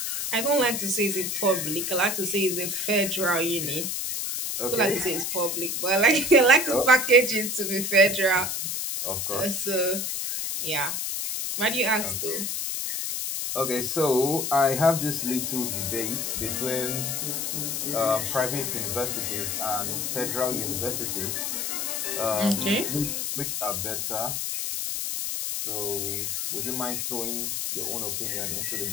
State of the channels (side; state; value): left; noise; hiss, 1 dB below the sound